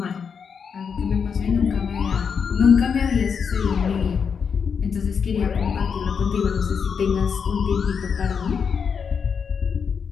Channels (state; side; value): quieter; right; 6.4 dB